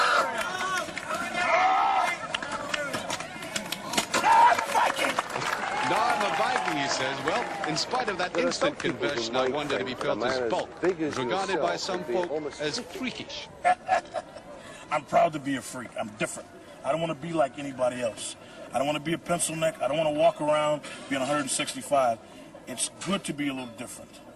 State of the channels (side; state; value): both; identical; correlation 1.00